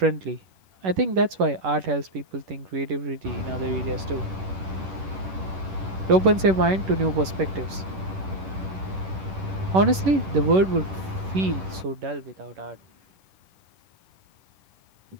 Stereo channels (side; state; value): left; late; 11 ms